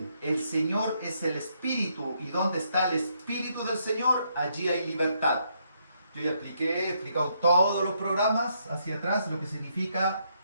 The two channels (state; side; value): inverted; both; correlation -0.75